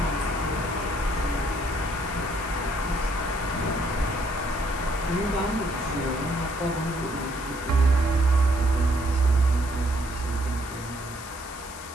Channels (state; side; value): noise; left; hiss, 15 dB below the sound